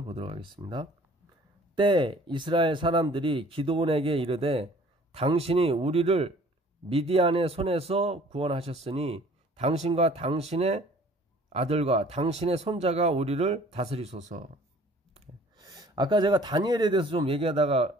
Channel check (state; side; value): normal; both; correlation 0.52